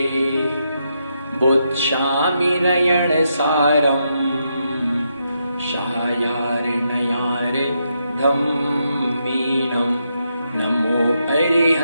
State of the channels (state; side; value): inverted; both; correlation -0.81